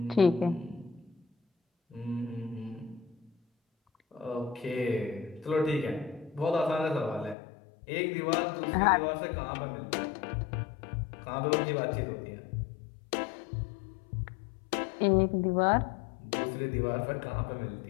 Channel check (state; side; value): drops out; right; at 7.4 s